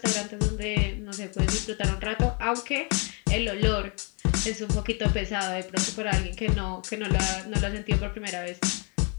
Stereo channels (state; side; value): quieter; right; 33.4 dB